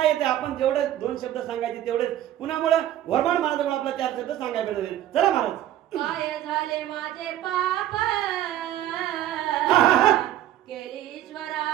येते? आपण जेवढे 2 शब्द सांगायचे तेवढेच. कुणामुळे? घोरबाण महाराजांमुळे आपल्याला 4 शब्द सांगायला भेटले. चला महाराज. काय झाले माझे पाप केली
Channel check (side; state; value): left; quieter; 12.6 dB